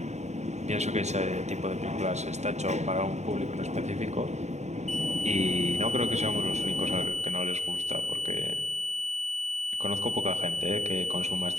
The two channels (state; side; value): late; left; 0.33 ms